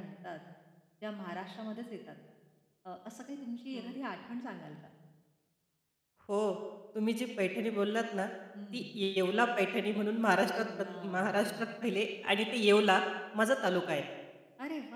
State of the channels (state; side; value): identical; both; correlation 1.00